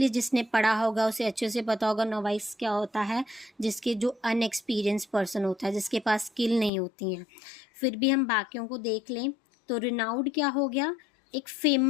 जिसने पढ़ा होगा उसे अच्छे से पता होगा नोवाइस क्या होता है, जिसके जो अनएक्सपीरियंस पर्सन होता है, जिसके पास स्किल नहीं होती हैं. फिर भी हम बाकियों को देख लें तो रिनाउड क्या हो गया? एक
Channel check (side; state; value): right; drops out; at 6.7 s